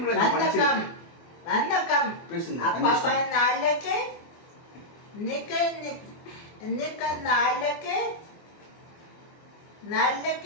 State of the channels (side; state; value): right; late; 24 ms